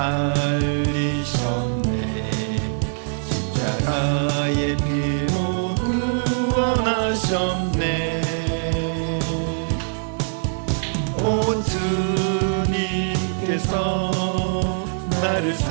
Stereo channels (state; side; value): silent; left; digital silence